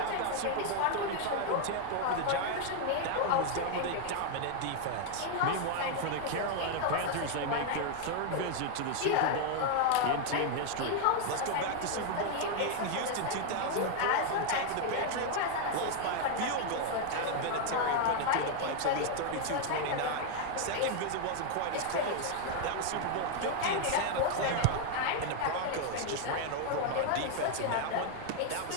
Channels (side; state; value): both; different; correlation 0.00